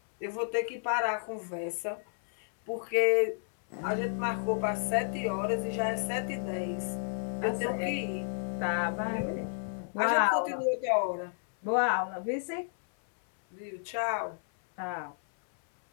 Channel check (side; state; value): right; silent; 57 dB below the other